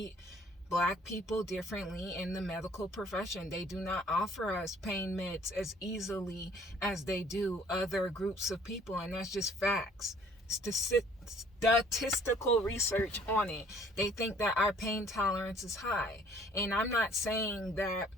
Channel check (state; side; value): normal; both; correlation 0.57